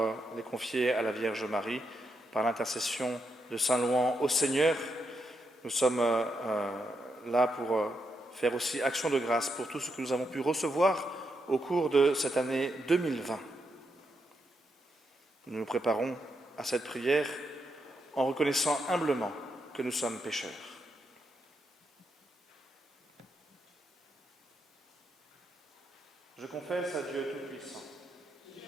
les confier à la Vierge Marie par l'intercession de Saint Louan au Seigneur. Nous sommes là pour faire aussi action de grâce pour tout ce que nous avons pu recevoir au cours de cette année 2020. Nous nous préparons à cette prière en reconnaissant humblement que nous sommes pécheurs. Je confesse à Dieu Tout-Puissant,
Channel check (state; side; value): normal; both; correlation 0.82